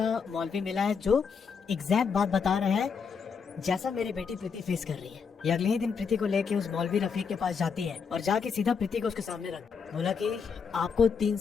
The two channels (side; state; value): right; quieter; 6.0 dB